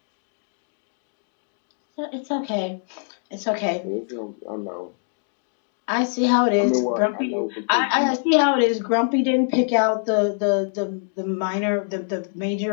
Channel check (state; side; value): silent; right; digital silence